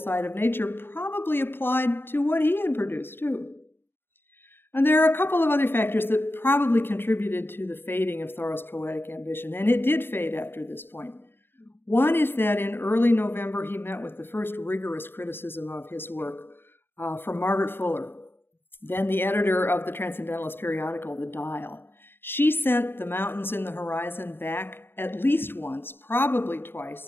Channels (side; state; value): right; late; 0.10 ms